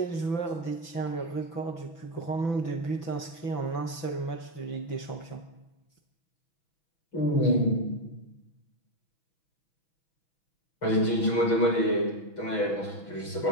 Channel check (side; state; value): right; late; 6.0 ms